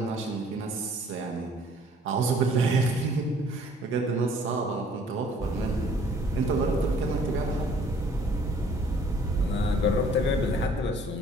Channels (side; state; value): both; normal; correlation 0.56